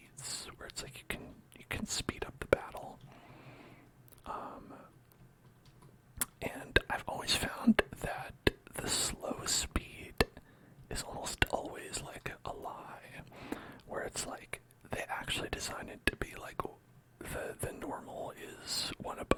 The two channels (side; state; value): both; identical; correlation 1.00